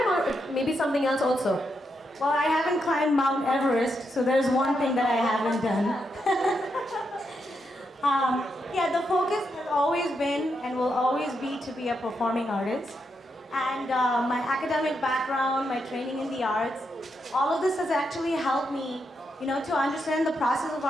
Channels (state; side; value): normal; both; correlation 0.82